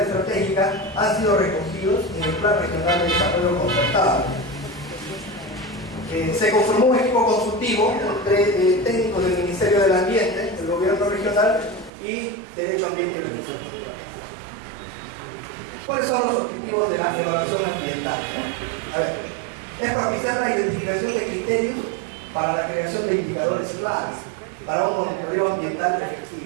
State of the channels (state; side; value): drops out; left; at 11.9 s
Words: han sido recogidos en el Plan Regional de Desarrollo Concertado. Se conformó un equipo consultivo entre técnicos del Ministerio del Ambiente, el Gobierno Regional y Derecho Ambiente y Recursos Naturales. ¿Cuáles son los objetivos de la evaluación ambiental, ¿no? A ver, es propiciar la identificación de criterios para la creación de indicadores claves para un monitoreo ambiental